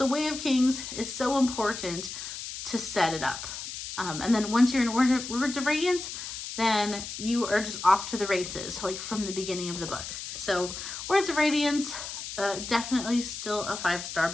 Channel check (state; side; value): noise; left; hiss, 8 dB below the sound